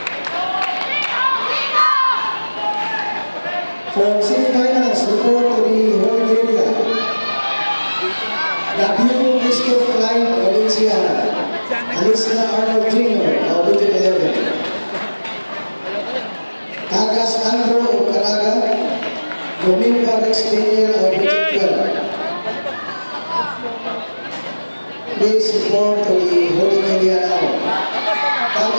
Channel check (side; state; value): both; inverted; correlation -1.00